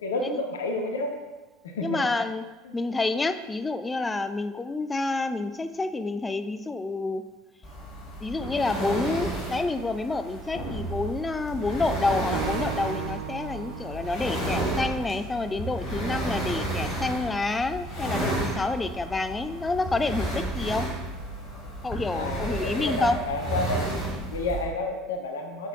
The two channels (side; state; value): both; normal; correlation 0.64